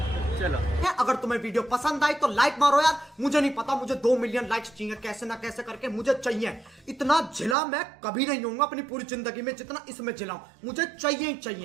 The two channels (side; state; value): left; drops out; at 7.6 s